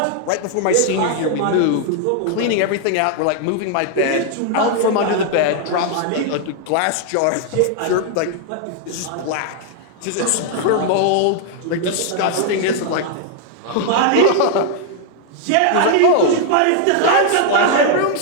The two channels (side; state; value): both; different; correlation 0.00